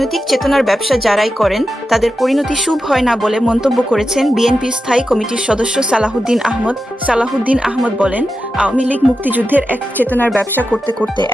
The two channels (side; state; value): both; normal; correlation 0.90